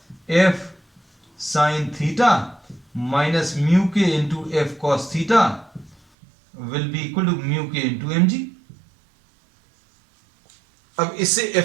f sine theta minus mu के into F cos theta will be equal to mu के इंटू एम जी। अब इससे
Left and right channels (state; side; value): drops out; left; at 6.0 s